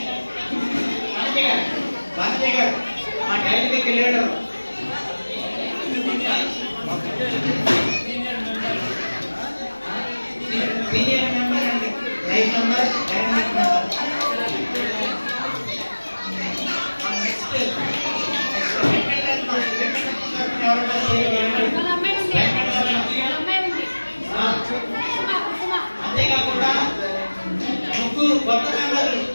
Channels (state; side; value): inverted; both; correlation -1.00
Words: భారతీయ గారు మా డైరీకి వెళ్ళాడు. సీనియర్ మెంబర్ అండి, లైఫ్ మెంబర్, డైనమిక్ మెంబర్. అంతేకాకుండా ముగ్గురు కొత్త మెంబర్లు